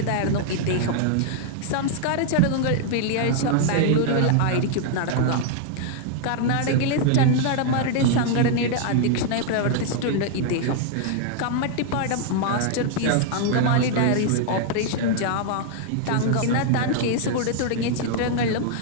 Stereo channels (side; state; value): both; different; correlation -0.01